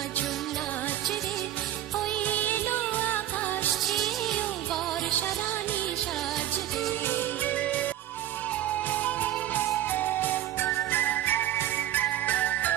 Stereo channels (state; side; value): quieter; left; 12.9 dB